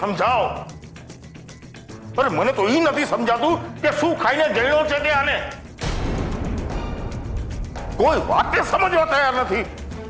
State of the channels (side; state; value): both; identical; correlation 1.00